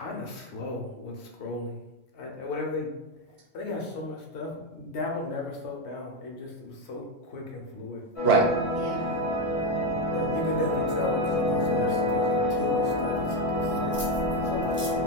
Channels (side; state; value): both; normal; correlation 0.08